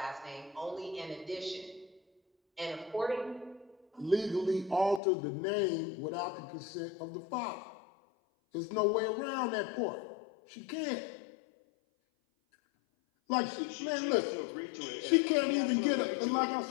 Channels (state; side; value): drops out; right; at 5.0 s